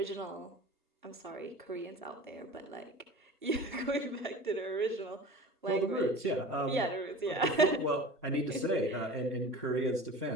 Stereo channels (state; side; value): normal; both; correlation 0.37